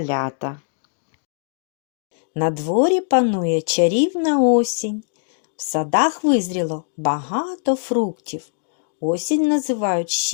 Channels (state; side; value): silent; right; digital silence